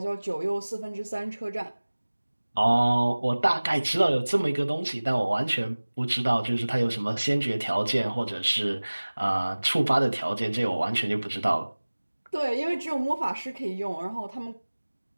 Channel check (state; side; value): inverted; both; correlation -1.00